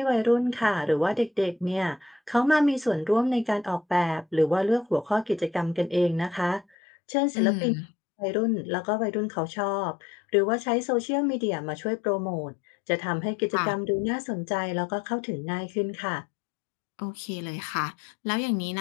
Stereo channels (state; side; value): drops out; right; at 6.7 s